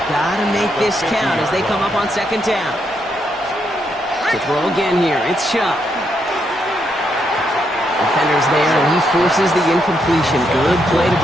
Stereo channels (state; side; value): normal; both; correlation 0.78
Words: Gotta make this count as they come up on second down. To throw again here, it's Shuck. Defender's there, and he forces the incompletion. Good play to